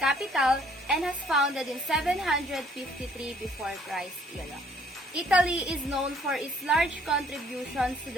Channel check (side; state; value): both; normal; correlation 0.62